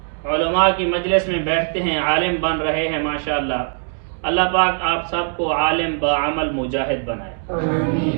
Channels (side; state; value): left; silent; 65 dB below the other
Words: علماء کی مجلس میں بیٹھتے ہیں، عالم بن رہے ہیں ماشاءاللہ۔ اللہ پاک آپ سب کو عالم بعمل مجاہد بنائے۔